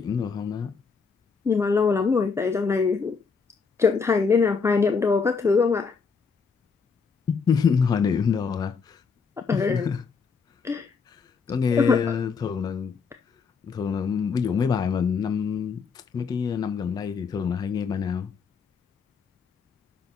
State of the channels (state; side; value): quieter; right; 5.3 dB